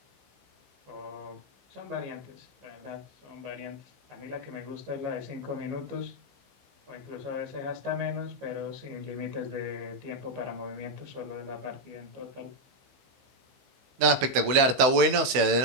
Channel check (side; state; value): left; late; 16 ms